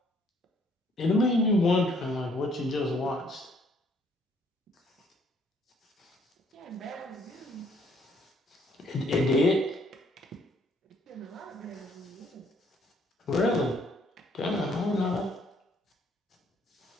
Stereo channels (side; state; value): both; normal; correlation 0.65